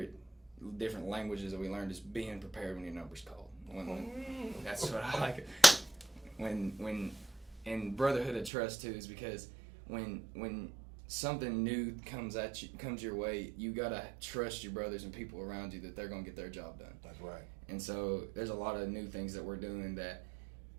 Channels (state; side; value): drops out; left; at 8.5 s